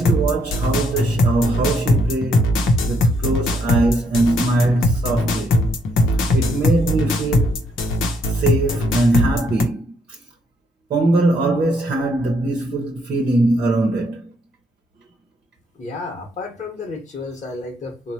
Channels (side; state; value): both; normal; correlation 0.72